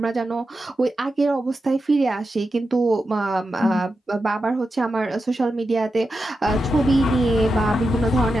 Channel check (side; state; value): both; normal; correlation 0.89